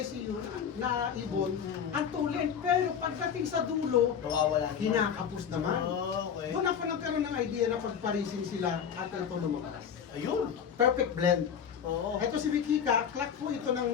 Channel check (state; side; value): quieter; right; 7.7 dB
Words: yun, na ibon, ang tulin. Pero pagdating sa dulo, Nawawala. kinakapos naman. Oh, okay. Doon ako nagkaroon ng idea na pagparising sila at ito lumabas. Ayun. Perfect blend. Oo. Ito si Wikika, clock po ito